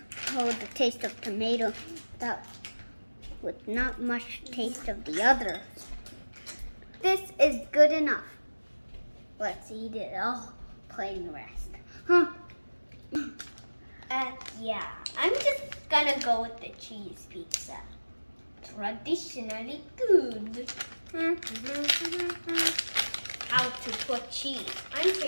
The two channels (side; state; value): both; inverted; correlation -1.00